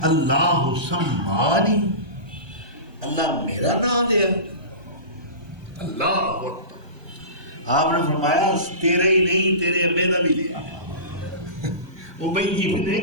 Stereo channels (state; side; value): late; left; 1.2 ms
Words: اللہ سمانی، اللہ میرا نام دیا، آپ نے فرمایا تیرے ہی نہیں تیرے ابے دا بھی لیا، ابی بن